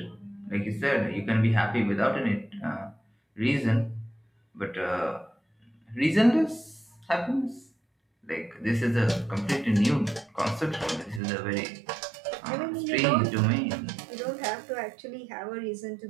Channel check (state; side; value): drops out; left; at 11.2 s